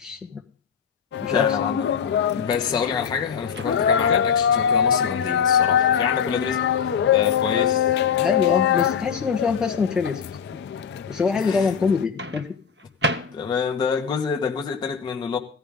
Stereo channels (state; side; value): quieter; right; 7.1 dB